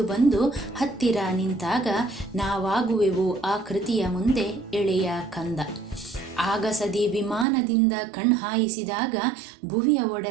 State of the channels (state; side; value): drops out; left; at 7.5 s